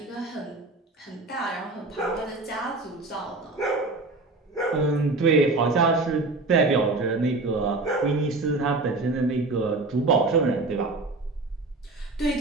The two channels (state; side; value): quieter; left; 3.3 dB